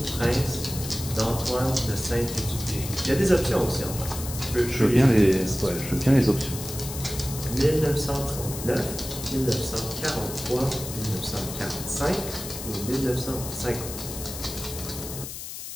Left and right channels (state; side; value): noise; left; hiss, 9 dB below the sound